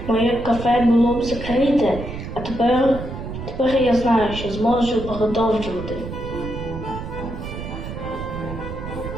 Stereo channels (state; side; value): noise; right; rumble, 8 dB below the sound